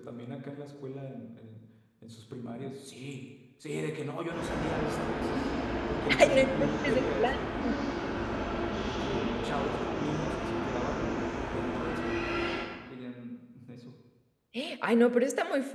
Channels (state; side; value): identical; both; correlation 1.00